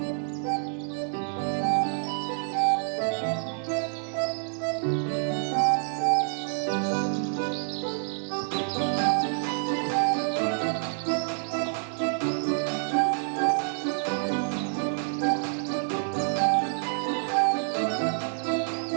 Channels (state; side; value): silent; left; 60 dB below the other